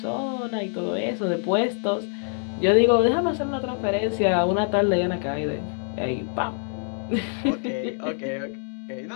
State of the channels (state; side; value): silent; right; 62 dB below the other